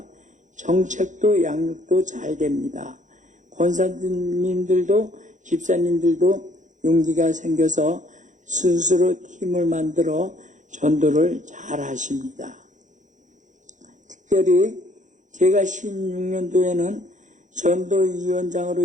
정책도 양육도 잘 됩니다. 권사님들도 집사님들도 용기가 생겨서 스스로 팀을 만들어 전도를 잘 하십니다. 특별히 제가 16년도에는 전도위원장으로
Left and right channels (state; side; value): late; left; 0.36 ms